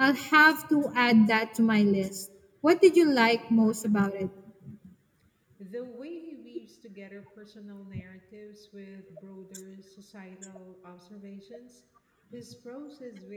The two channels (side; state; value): both; identical; correlation 1.00